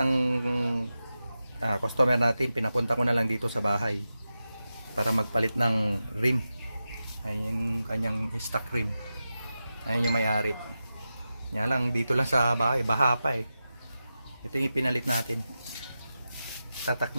customer natin, pinapunta ko na lang dito sa bahay para magpalit ng rim. Ayun yung kanyang stock rim. Ayun yung may-ari. Nga lang, dito lang sa bahay, baha pa eh. Ito yung pinalit natin. Tatak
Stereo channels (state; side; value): inverted; both; correlation -0.92